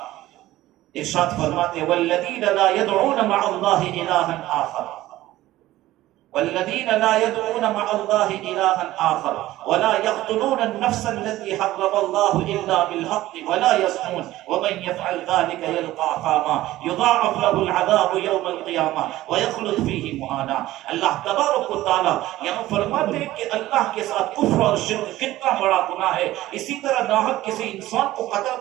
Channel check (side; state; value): left; quieter; 15.9 dB